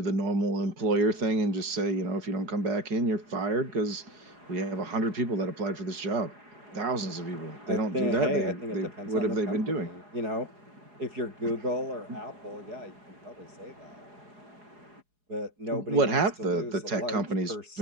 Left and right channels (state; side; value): late; left; 4.8 ms